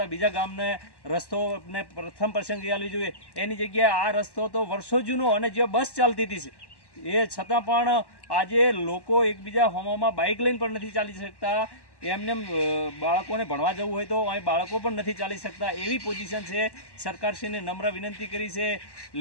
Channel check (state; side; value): late; right; 1.1 ms